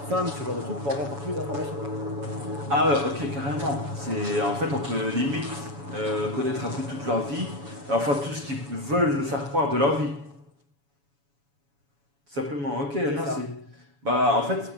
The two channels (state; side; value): late; left; 7.1 ms